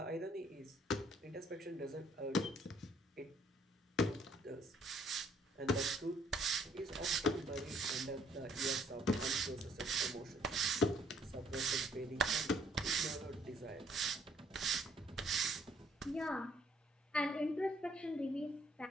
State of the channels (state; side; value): normal; both; correlation 0.64